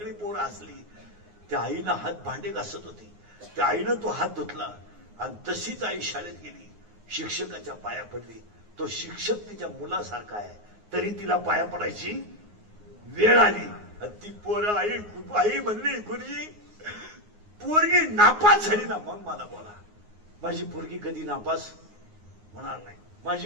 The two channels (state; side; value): late; left; 9.6 ms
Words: पोरं हसली. त्या आईनं हात भांडे घासत होती. त्या आईनं तो हात धुतला आणि तशीच आई शाळेत गेली. शिक्षकाच्या पाया पडली. तो शिक्षक तिच्या मुलासारखा आहे, तरी तिला पाया पडायची वेळ आली. ती पोरं आई म्हणली गुरुजी पोरगी नापास झाली ना मग मला बोला. माझी पोरगी कधी नापास होणार नाही.